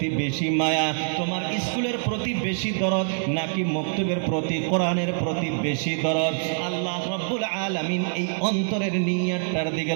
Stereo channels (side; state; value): left; silent; 62 dB below the other